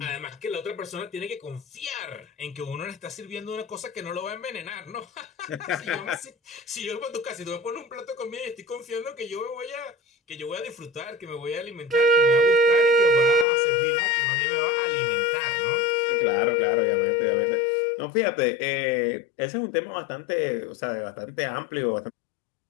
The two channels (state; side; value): drops out; right; at 13.5 s